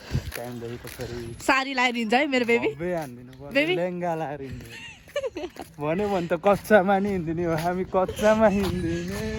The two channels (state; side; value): identical; both; correlation 1.00